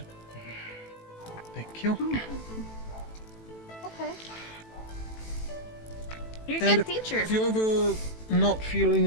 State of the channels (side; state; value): right; late; 18 ms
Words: Thank you. Okay. You're a And good teacher. If you're ever not feeling